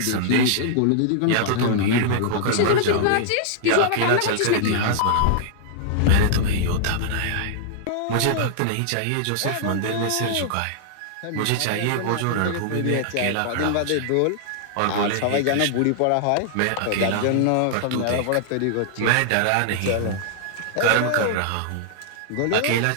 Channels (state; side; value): different; both; correlation -0.01